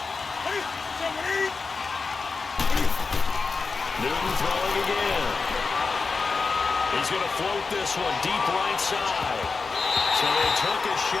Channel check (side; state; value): right; quieter; 4.5 dB